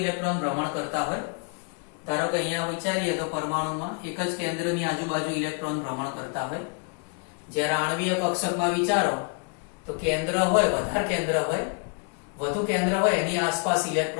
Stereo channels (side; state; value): right; quieter; 37.3 dB